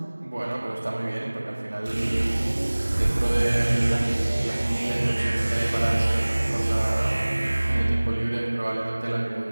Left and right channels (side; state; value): both; inverted; correlation -1.00